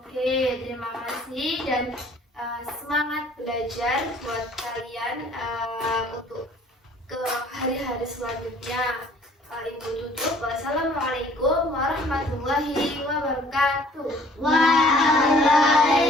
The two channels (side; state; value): both; normal; correlation 0.55